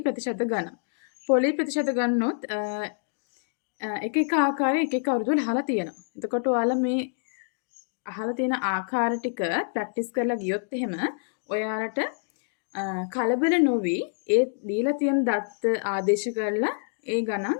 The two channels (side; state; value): right; silent; digital silence